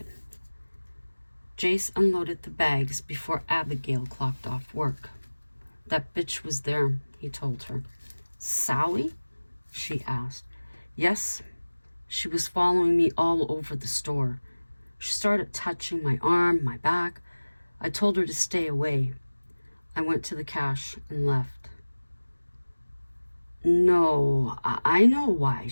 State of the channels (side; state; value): both; inverted; correlation -1.00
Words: Jace unloaded the bags before Abigail clocked off work. That bitch was there, he told her. Sally? She asked. Yes. She was following me all over the store. She started touching my arm, my back. I told her to stay away. I went to the cash and left. No, I know why.